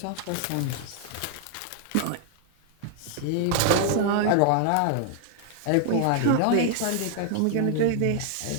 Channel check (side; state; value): both; different; correlation 0.00